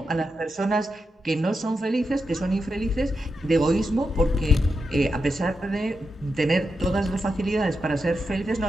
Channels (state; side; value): normal; both; correlation 0.87